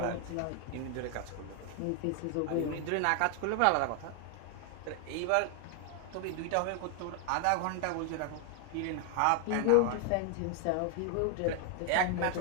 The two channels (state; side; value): different; both; correlation 0.00